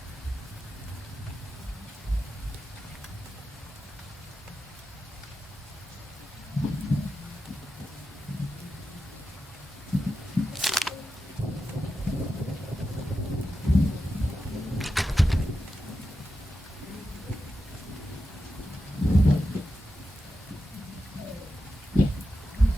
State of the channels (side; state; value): both; normal; correlation 0.90